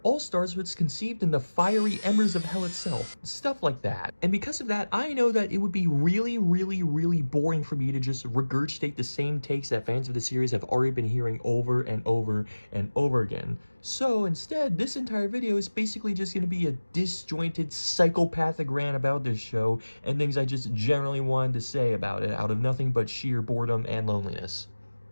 All-Stars was conceived in the fiery embers of hell itself. Stuff like that. And because of that, I know that it would be really, really, really boring for me to just regurgitate the same takes that fans of the series have already been hearing over and over and over again. So instead, this entire video is basically just going to be a disjointed, psychopathic rant about this show and things I just generally wanted to say about it out of nothing but sheer boredom and loneliness.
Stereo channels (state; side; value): inverted; both; correlation -1.00